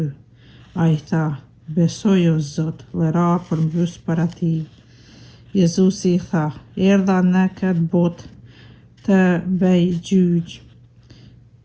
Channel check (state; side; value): identical; both; correlation 1.00